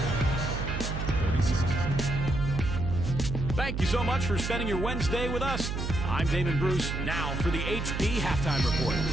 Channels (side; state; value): right; noise; hum, 3 dB below the sound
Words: 36. Thank you so much for spending your Wednesday with us. I'm Damon Bruce. Now for the HP Halftime Report.